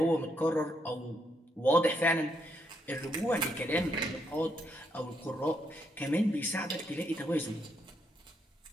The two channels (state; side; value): normal; both; correlation 0.76